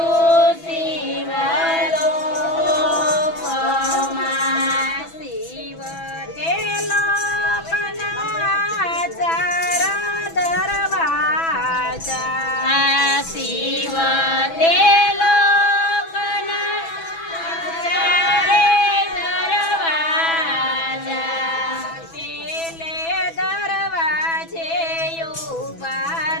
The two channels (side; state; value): right; late; 6.1 ms